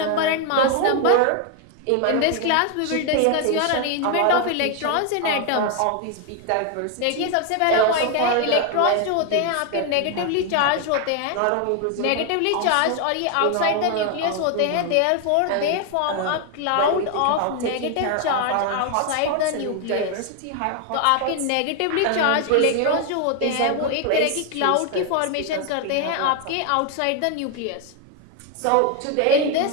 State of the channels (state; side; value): different; both; correlation 0.01